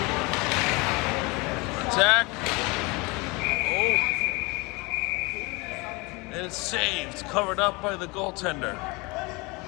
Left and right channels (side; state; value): right; quieter; 26.1 dB